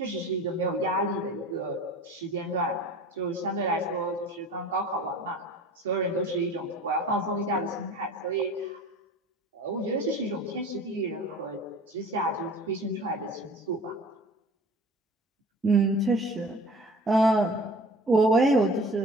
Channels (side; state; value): both; normal; correlation 0.43